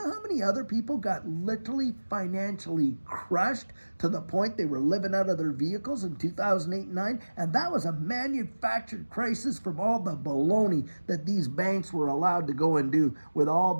how many other people got literally financially crushed to the point they were living out of their vehicles in 2008 and 9? And that was a manufactured crisis from all the baloney that these banks were allowed to go and do with all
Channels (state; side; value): inverted; both; correlation -1.00